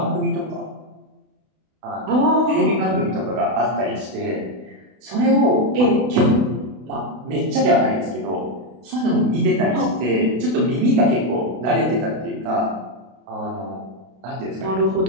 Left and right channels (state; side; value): late; left; 32 ms